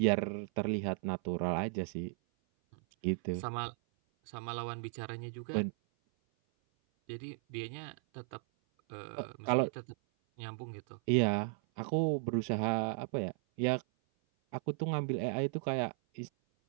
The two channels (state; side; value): silent; left; 54 dB below the other